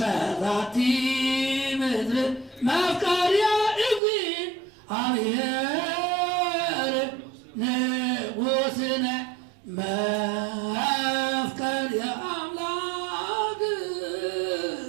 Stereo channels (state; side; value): drops out; left; at 4.0 s